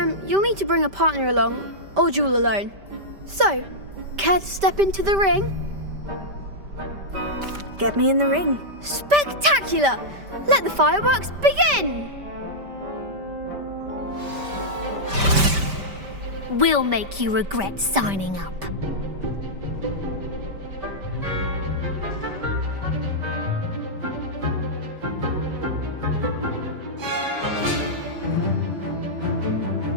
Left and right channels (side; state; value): left; late; 5.1 ms